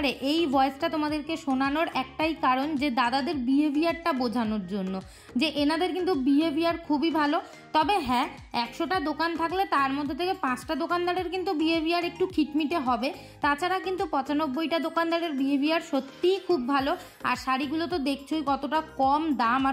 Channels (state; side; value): identical; both; correlation 1.00